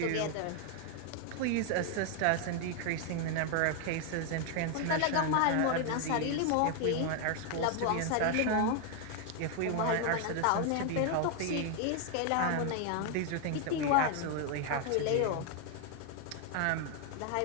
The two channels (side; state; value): both; different; correlation 0.00